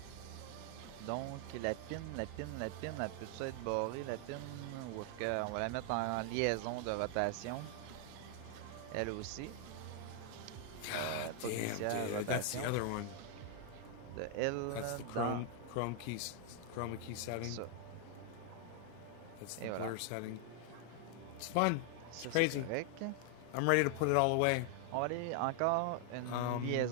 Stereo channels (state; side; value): different; both; correlation 0.00